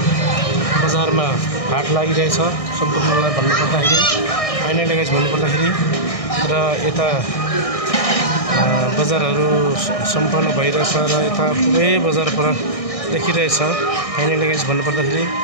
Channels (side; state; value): right; late; 1.6 ms